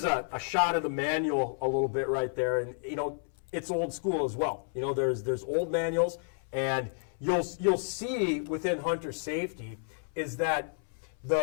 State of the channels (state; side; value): silent; right; 57 dB below the other